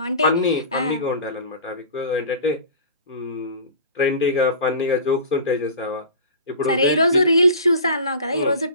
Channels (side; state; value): both; inverted; correlation -0.37